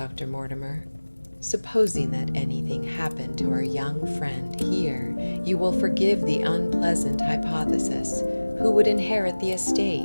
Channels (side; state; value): both; inverted; correlation -1.00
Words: Mortimer. Supposing that anything happened to our young friend here, you will forgive the unpleasant hypothesis. Who would inherit the